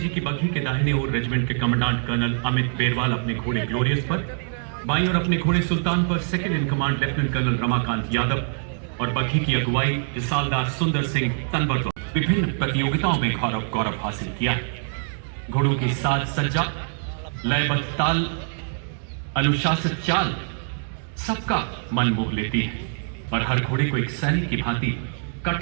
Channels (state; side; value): silent; left; digital silence